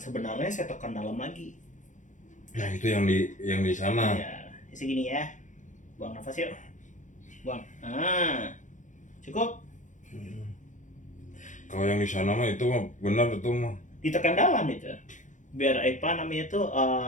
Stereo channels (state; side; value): late; right; 0.36 ms